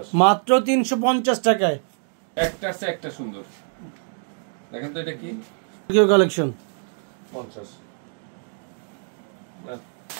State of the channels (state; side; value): silent; left; 56 dB below the other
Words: মাত্র 350 টাকায় একটা আছে একটা সুন্দর দেখেন তো এটা কি কিউ কালেকশন 50